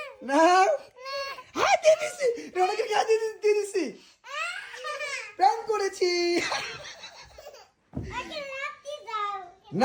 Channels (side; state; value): both; identical; correlation 1.00